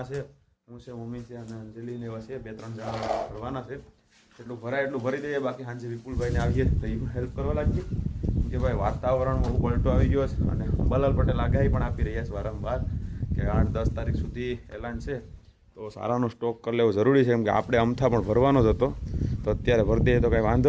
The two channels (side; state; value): both; identical; correlation 1.00